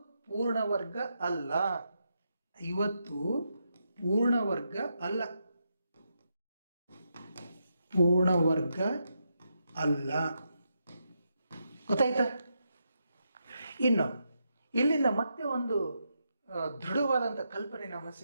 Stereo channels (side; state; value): both; inverted; correlation -0.82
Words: ಪೂರ್ಣ ವರ್ಗ ಅಲ್ಲ. 50 ಪೂರ್ಣ ವರ್ಗ ಅಲ್ಲ. ಪೂರ್ಣ ವರ್ಗ ಅಲ್ಲ. ಗೊತ್ತಾಯ್ತಾ? ಇನ್ನು ಇಲ್ಲಿಂದ ಮತ್ತೆ ಒಂದು ದೃಢವಾದಂಥ ಕಲ್ಪನೆ ನಮಗೆ